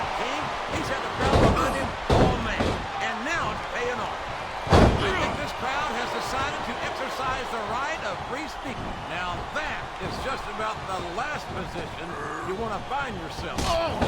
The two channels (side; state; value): both; identical; correlation 1.00